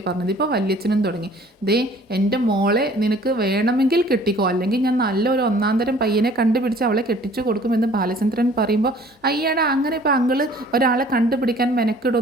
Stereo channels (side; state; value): both; normal; correlation 0.53